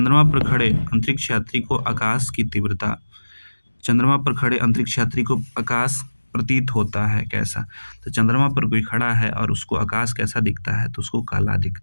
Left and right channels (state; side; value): inverted; both; correlation -1.00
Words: पर खड़े अंतरिक्ष यात्री को आकाश की तीव्रता, चंद्रमा पर खड़े अंतरिक्ष यात्री को आकाश प्रतीत होता है कैसा? तो चंद्रमा पर कोई खड़ा है और उसको आकाश कैसा दिखता है? तो उसको काला